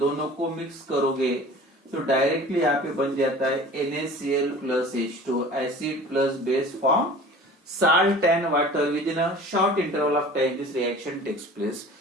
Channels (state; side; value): normal; both; correlation 0.42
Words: को मिक्स करोगे तो डायरेक्टली यहाँ पे बन जाता है NaCl plus H2, acid plus base form salt and water within a short interval of time this reaction takes place.